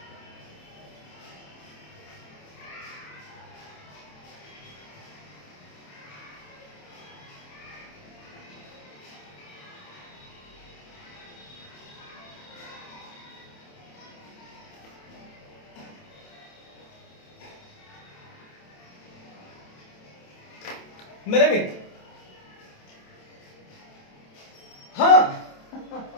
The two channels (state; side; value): late; right; 27 ms